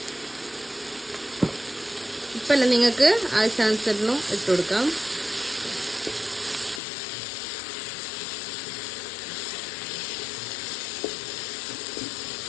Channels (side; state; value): right; drops out; at 6.8 s